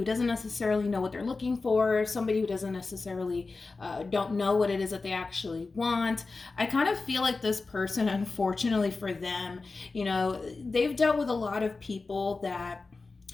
doesn't necessarily know what they're looking for, somebody who doesn't necessarily don't know what it is that they actually want. I kind of feel like this person, unfortunately for them, they've dealt with a lot of people that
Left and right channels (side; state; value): right; quieter; 3.9 dB